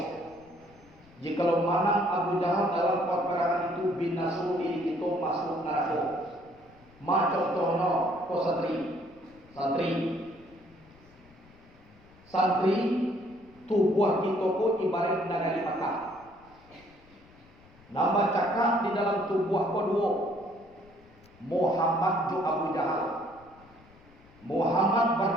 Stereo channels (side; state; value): left; noise; rumble, 26 dB below the sound